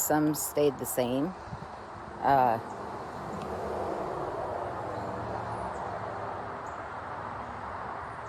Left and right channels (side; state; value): both; identical; correlation 1.00